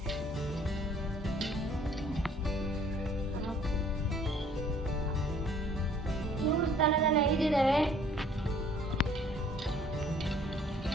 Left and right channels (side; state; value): both; normal; correlation 0.57